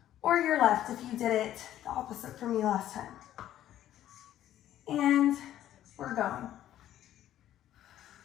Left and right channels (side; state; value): right; quieter; 12.3 dB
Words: Or your left if you did it the opposite for me last time. And we're going.